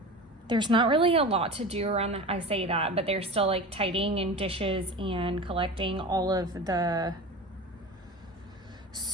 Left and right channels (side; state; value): both; normal; correlation 0.32